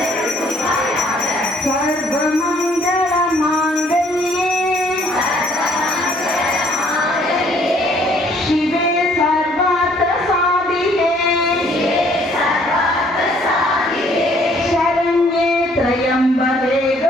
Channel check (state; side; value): normal; both; correlation 0.62